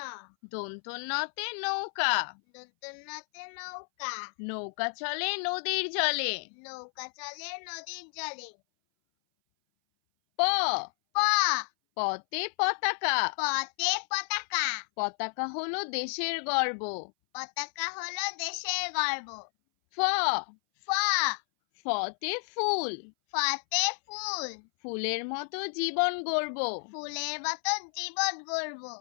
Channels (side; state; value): right; silent; 57 dB below the other